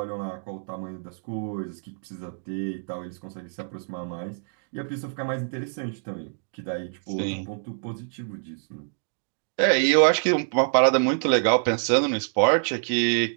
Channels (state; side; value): silent; left; digital silence